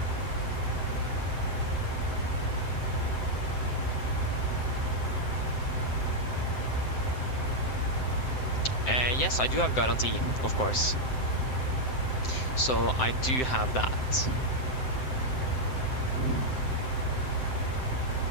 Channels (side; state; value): right; late; 7.8 ms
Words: Yes, I do have guarantee, of course. So I do have that.